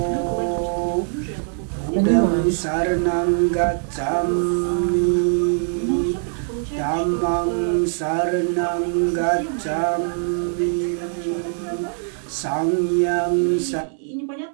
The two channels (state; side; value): silent; left; digital silence